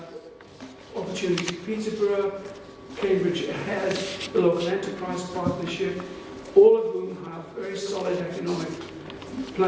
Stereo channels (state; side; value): identical; both; correlation 1.00